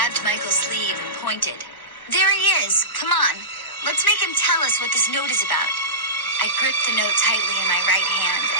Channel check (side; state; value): right; late; 1.4 ms